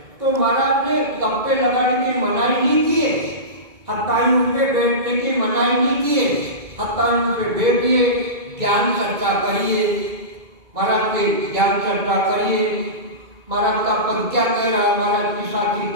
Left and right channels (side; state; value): left; late; 2.2 ms